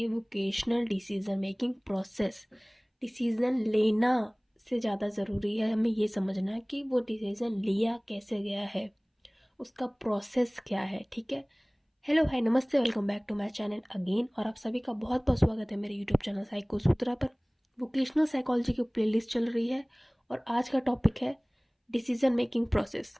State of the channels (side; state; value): both; identical; correlation 1.00